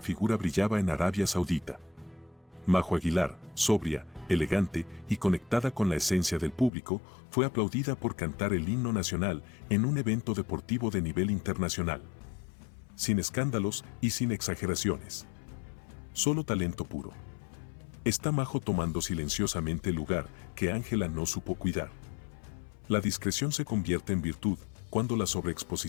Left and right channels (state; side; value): drops out; right; at 6.7 s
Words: figura brillaba en Arabia Saudita. Majo Aguilar, sobria, elegante y conectada con la esencia del público, fue aplaudida por cantar el himno nacional en un evento deportivo de nivel internacional. Sin escándalos y sin exageraciones. Solo talento puro. Está Majo tomando silenciosamente el lugar que Ángela no supo cuidar. ¿La discreción se convierte en virtud cuando la